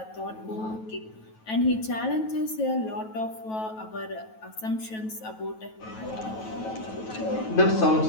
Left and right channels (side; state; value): right; late; 9.2 ms